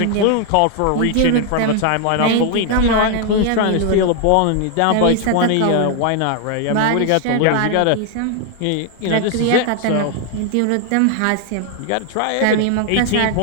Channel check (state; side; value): different; both; correlation 0.00